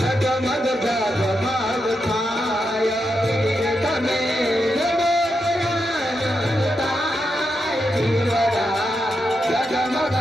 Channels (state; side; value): normal; both; correlation 0.85